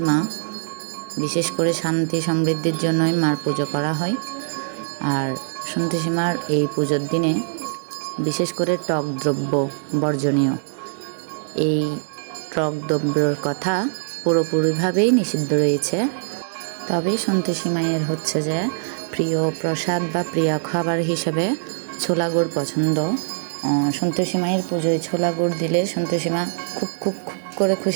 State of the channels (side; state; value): left; silent; 60 dB below the other